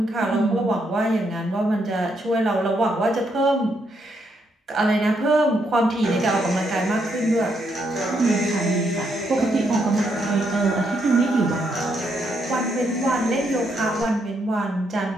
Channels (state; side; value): normal; both; correlation 0.77